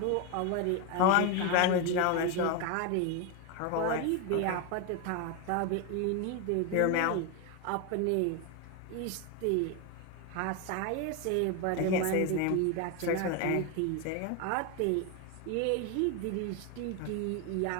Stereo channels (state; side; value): different; both; correlation 0.02